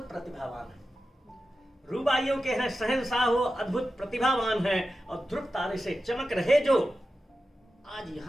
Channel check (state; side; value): normal; both; correlation 0.92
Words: प्रतिभावान है। रुबाइयों के हैं शहंशाह हो, अद्भुत प्रतिभावान है, और ध्रुव तारे से चमक रहे जो आज